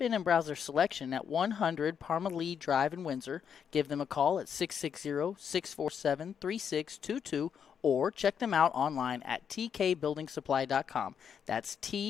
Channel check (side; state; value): right; quieter; 7.6 dB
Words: in and browse their selection at 100 Parmalee Drive in Windsor. Give them a call at 660-647-3622 or check them out online at tkbuildingsupply.com. That's